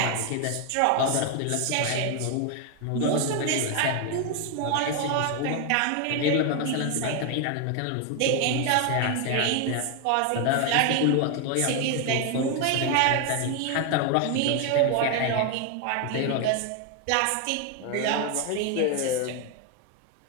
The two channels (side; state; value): both; different; correlation 0.01